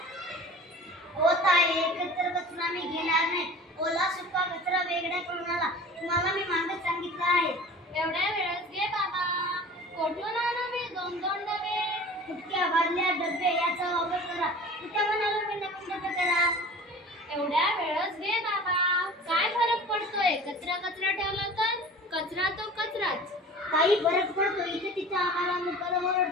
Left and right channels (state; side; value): normal; both; correlation 0.41